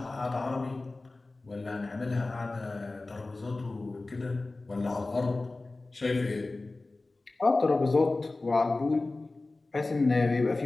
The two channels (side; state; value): right; quieter; 3.2 dB